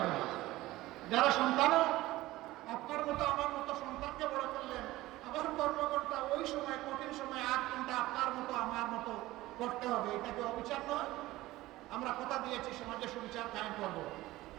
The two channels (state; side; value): quieter; left; 17.6 dB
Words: না। যারা সন্তানও আপনার মতো আমার মতো সন্তানকে বড় করলেন, আবার কর্মকর্তা ওই সময় কঠিন সময় 8 ঘন্টা আপনার মতো আমার মতো করতে হবে, এটা কি অবিচার নয়? আমরা কথা দিয়েছি সমাজে সুবিচার কায়েম করবো,